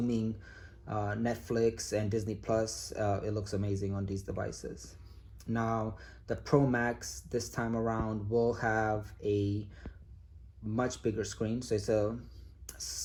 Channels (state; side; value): identical; both; correlation 1.00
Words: Netflix and Disney Plus, it looks amazing on these devices. Now, the Pro Max this time around will have a much bigger screen. So it's a